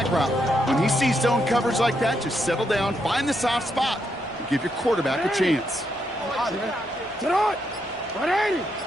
route. When he sees zone coverage like that, just settle down, find the soft spot, and give your quarterback a chance.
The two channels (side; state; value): both; normal; correlation 0.79